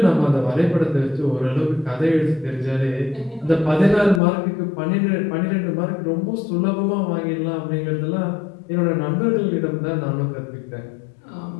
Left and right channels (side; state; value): right; drops out; at 4.2 s